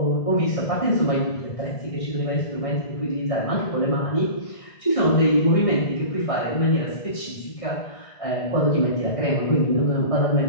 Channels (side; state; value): right; late; 1.6 ms